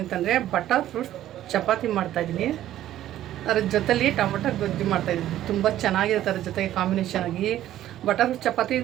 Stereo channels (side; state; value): left; quieter; 12.9 dB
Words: ಅಂತಂದರೆ ಬಟರ್ ಫ್ರೂಟ್ಸ್ ಚಪಾತಿ ಮಾಡ್ತಾಯಿದ್ದೀನಿ. ಅದ್ರ ಜೊತೆಲಿ ಟೊಮೊಟೊ ಗೊಜ್ಜು ಮಾಡ್ತಾಯಿದ್ದೀನಿ. ತುಂಬ ಚೆನ್ನಾಗಿರುತ್ತೆ ಅದ್ರ ಜೊತೆಗೆ ಕಾಂಬಿನೇಷನ್ ಆಗಿ. ಬಟರ್ ಫ್ರೂಟ್ಸ್ ಚಪಾತಿ